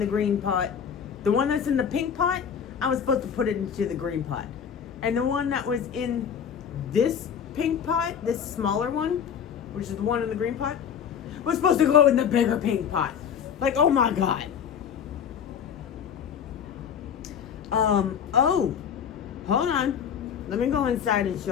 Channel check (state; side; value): quieter; right; 7.8 dB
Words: green pot. The one that's in the pink pot, I was supposed to put it into the green pot. And the one that was in this pink pot, this smaller one, which is the one in the green pot, was supposed to go in the bigger pink pot. Like, oh my God. Oh, hold on. Let me go inside and